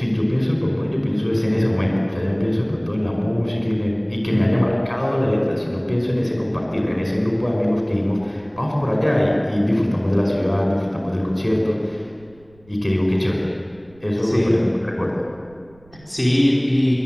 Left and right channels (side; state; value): right; noise; rumble, 28 dB below the sound